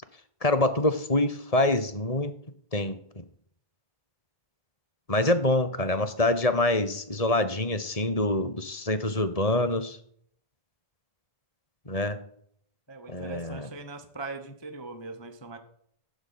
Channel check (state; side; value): late; right; 1.7 ms